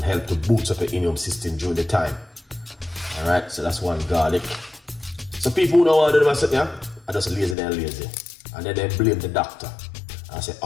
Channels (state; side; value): drops out; right; at 7.6 s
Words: help to boost up your immune system during the time. Alright, so that's 1 garlic. So people who don't want to do myself, yeah, I just lazy and lazy. And then they blame the doctor. And I say,